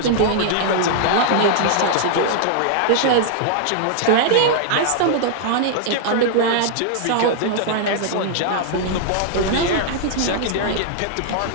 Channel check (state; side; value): different; both; correlation -0.01